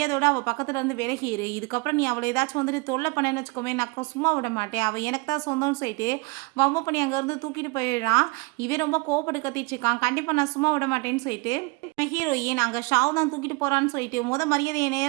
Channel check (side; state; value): left; quieter; 27.8 dB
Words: அவள் பக்கத்தில் இருந்து விலகிரு, இதுக்கப்புறம் நீ அவளை ஏதாச்சும் வந்துட்டு தொல்லை பண்ணேன்னு வச்சுக்கோமே நான் சும்மா விட மாட்டேன், அவள் எனக்கு தான் சொந்தம்னு சொல்லிட்டு வம்பு பண்ணி அங்கேருந்து தூக்கிட்டு போயிடுறான். இவன் ரொம்ப கோவப்பட்டு கத்திட்டு இருக்கான். கண்டிப்பாக நான் சும்மா விட மாட்டேன்னு சொல்லிட்டு ஹீரோயின் அங்கே ஷாவ் தான் தூக்கிட்டு போகிறான்னு சொல்லிட்டு மரியாதையை என்னை